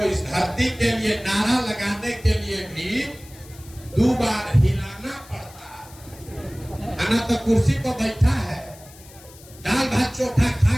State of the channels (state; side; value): noise; left; hiss, 22 dB below the sound